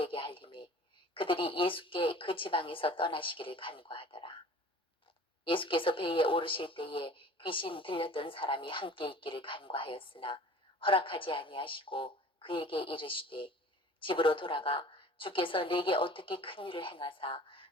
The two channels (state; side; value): normal; both; correlation 0.45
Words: 알림해 그들이 예수께 그 지방에서 떠나시기를 간구하더라. 예수께서 배에 오르실 때에 귀신 들렸던 사람이 함께 있기를 간구하였으나 허락하지 아니하시고 그에게 이르시되 집으로 돌아가 주께서 내게 어떻게 큰 일을 행하사